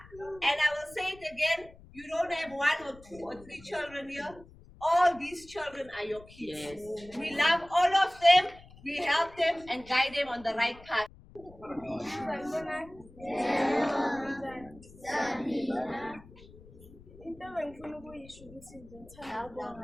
And I will say it again, you don't have 1 or 2 or 3 children here. All these children are your kids. Yes. We love all of them. We help them and guide them on the right path. Into engifuna ukuyisho ukuthi ngithanda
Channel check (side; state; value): left; noise; rumble, 21 dB below the sound